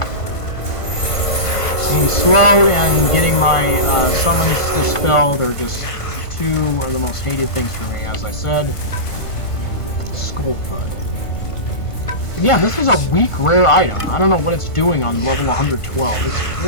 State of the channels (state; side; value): late; right; 1.5 ms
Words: Being slow and getting my summons dispelled are just two of the most hated things for me, as I said. Skull Thud. Yeah, this is a weak rare item. I don't know what it's doing on level 112. It's